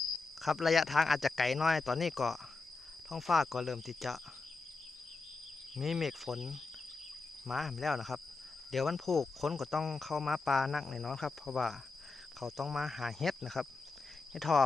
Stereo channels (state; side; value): quieter; right; 3.9 dB